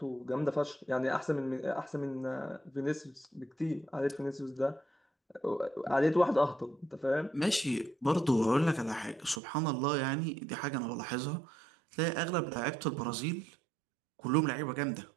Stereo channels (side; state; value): left; drops out; at 9.4 s